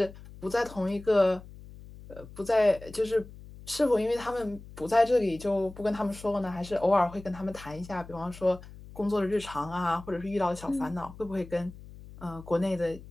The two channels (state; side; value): noise; left; hum, 17 dB below the sound